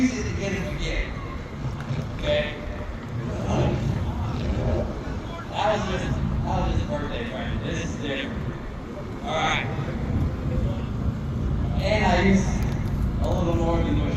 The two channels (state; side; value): identical; both; correlation 1.00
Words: it to get him a gift. Okay? That was just a birthday present. This is different. Alright. And I used a little more than what